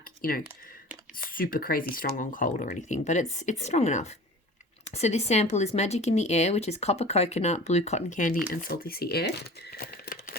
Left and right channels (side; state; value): both; normal; correlation 0.40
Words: super crazy strong on cold or anything, but it's strong enough. So this sample is Magic in the Air, which is copper coconut, blue cotton candy, and salty sea air.